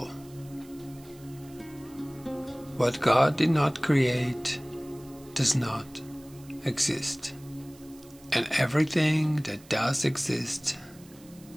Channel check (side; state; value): right; noise; hiss, 24 dB below the sound